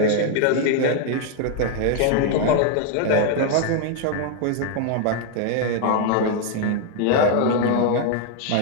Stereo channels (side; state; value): both; different; correlation 0.00